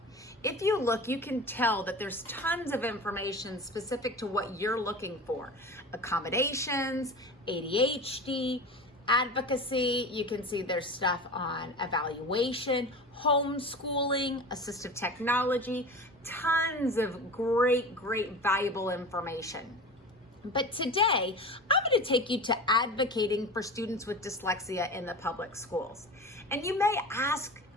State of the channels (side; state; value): both; normal; correlation 0.32